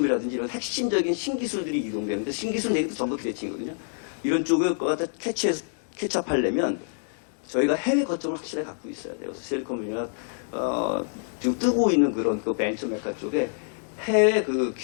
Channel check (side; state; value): right; silent; digital silence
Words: 이런 핵심적인 신기술들이 이동되는데 신기술 내기도 전부 기대칭이거든요. 이런 쪽을 갖다 캐치업하려면 저희가 해외 거점을 확실하게 갖고 있어야 돼요. 그래서 실리콘밸리가 지금 뜨고 있는 그런 그 벤처 메카 쪽에 해외 그